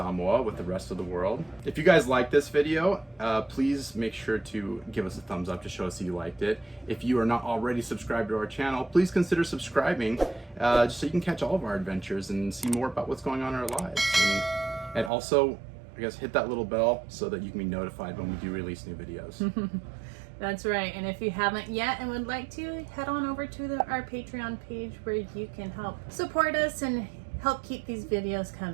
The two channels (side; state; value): left; drops out; at 15.1 s